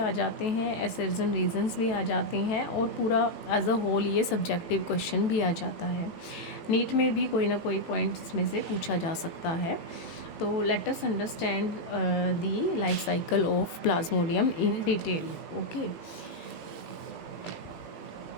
जाते हैं, एसेर्स एंड रीजंस भी आ जाते हैं, और पूरा एज अ होल ये सब्जेक्टिव क्वेश्चन भी आ जाता है। नीट में भी कोई ना कोई पॉइंट इसमें से पूछा जा सकता है। तो let us understand the life cycle of plasmodium in detail. Okay,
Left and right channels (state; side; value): late; right; 18 ms